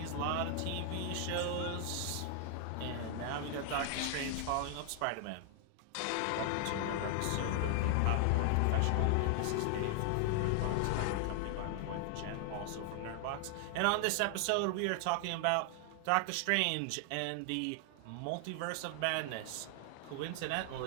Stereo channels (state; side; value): different; both; correlation 0.00